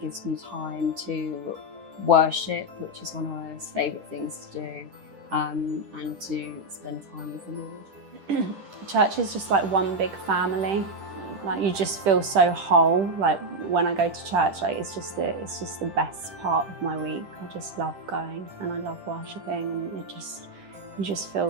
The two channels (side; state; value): left; late; 10 ms